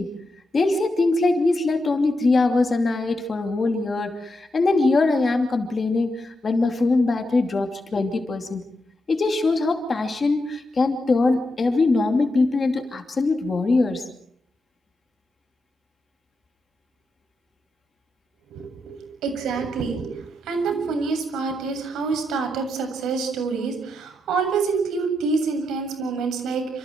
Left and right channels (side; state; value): both; normal; correlation 0.84